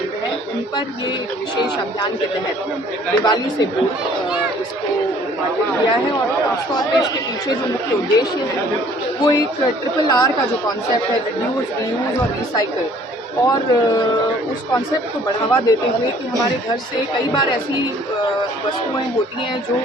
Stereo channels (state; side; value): normal; both; correlation 0.56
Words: हैं उन पर ये विशेष अभियान के तहत दिवाली से पूर्व इसको उद्घाटन किया है। और खासतौर पर इसके पीछे जो मुख्य उद्देश्य है वो एक RRR का जो कॉन्सेप्ट है, रिड्यूस, रीयूज और रिसाइकिल, और उस कॉन्सेप्ट को बढ़ावा देते हुए कि हमारे घर से कई बार ऐसी वस्तुएं होती हैं जो